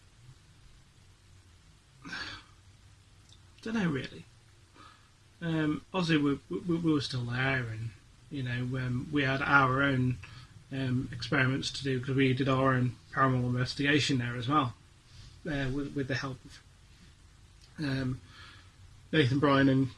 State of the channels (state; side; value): identical; both; correlation 1.00